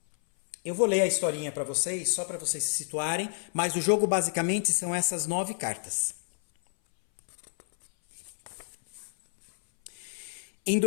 eu vou ler a historinha para vocês, só para vocês se situarem, mas o jogo basicamente são essas 9 cartas. Em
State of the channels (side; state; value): right; silent; 58 dB below the other